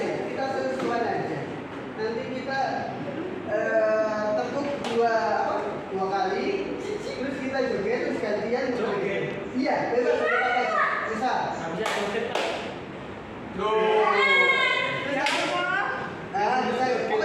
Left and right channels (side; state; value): both; identical; correlation 1.00